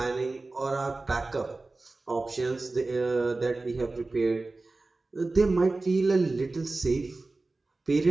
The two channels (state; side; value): quieter; left; 3.3 dB